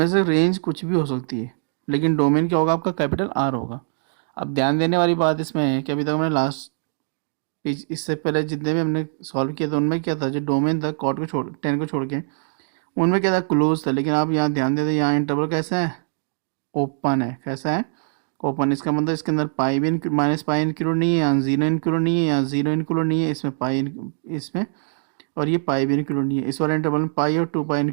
से रेंज कुछ भी हो सकती है, लेकिन डोमेन क्या होगा? आपका कैपिटल आर होगा। अब ध्यान देने वाली बात इसमें है कि अभी तक हमने लास्ट इससे पहले जितने भी हमने सॉल्व किया था उनमें क्या था? जो डोमेन था कॉट को छोड़ 10 को छोड़ के उनमें क्या था? क्लोज था। लेकिन आप यहाँ ध्यान देते, यहाँ इंटरवल कैसा है? ओपन है। कैसा है? ओपन। इसका मतलब इसके अंदर पाई भी -π इंक्लूड नहीं है, यहाँ 0 इंक्लूड नहीं है, यहाँ 0 इंक्लूड नहीं है, इसमें इसमें और ये पाई भी इंक्लूड नहीं है। इस वाले इंटरवल में पाई और 2π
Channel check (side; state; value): left; silent; digital silence